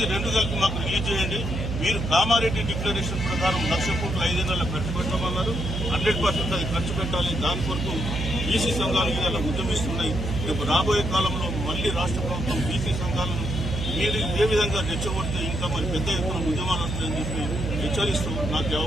2 కలిపి మాకు రిలీజ్ చేయండి. మీరు కామారెడ్డి డిక్లరేషన్ ప్రకారం 1,00,000 కోట్లు 5 నెలల ఖర్చు పెట్టమన్నారు. 100% అది ఖర్చు పెట్టాలి. దాని కొరకు బీసీ సంఘాలు ఇలా ఉద్యమిస్తున్నాయి. రేపు రాబోయే కాలంలో మళ్లీ రాష్ట్ర ప్రభుత్వం బీసీ సంఘాలను మీరు ఇదే విధంగా రెచ్చగొడితే ఇంకా మరి పెద్ద ఎత్తున ఉద్యమాలు వస్తాయని చెప్పి హెచ్చరిస్తూ నాకు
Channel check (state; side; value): noise; right; hum, 3 dB below the sound